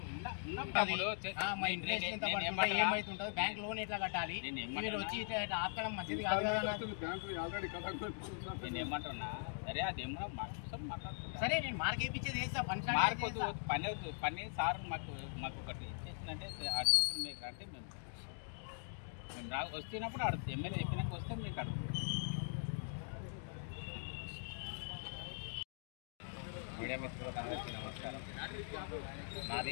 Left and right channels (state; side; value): silent; right; digital silence